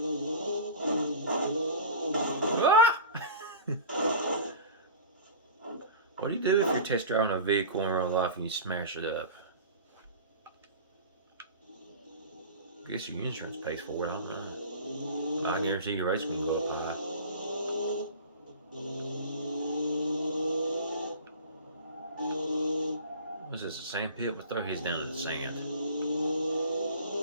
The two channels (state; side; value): inverted; both; correlation -0.36